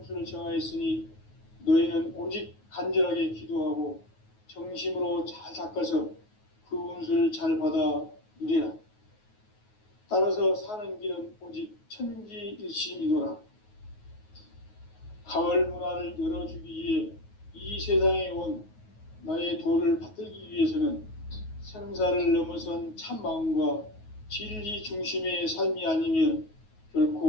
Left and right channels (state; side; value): late; right; 9.4 ms